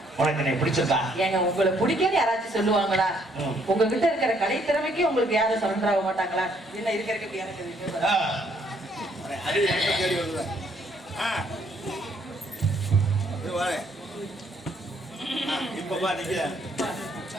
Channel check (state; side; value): normal; both; correlation 0.67